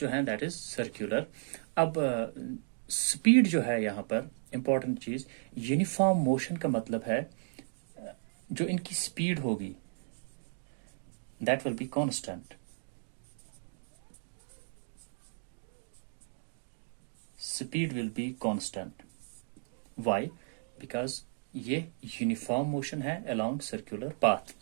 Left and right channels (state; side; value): silent; left; digital silence